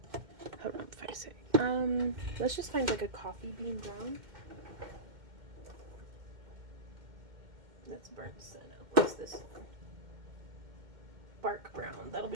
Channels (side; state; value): left; late; 2.1 ms